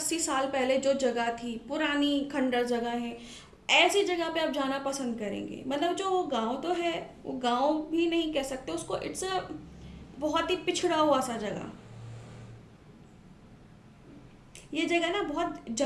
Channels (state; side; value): identical; both; correlation 1.00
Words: साल पहले जो जगह थी, पुरानी खंडर जगह है, ऐसी जगह पे आप जाना पसंद करेंगे। मतलब जो वो गांव तो है, वो गांव भी नहीं कह सकते उसको, इट्स अ बहुत ही पिछड़ा हुआ सा जगह। ये जगह ना बहुत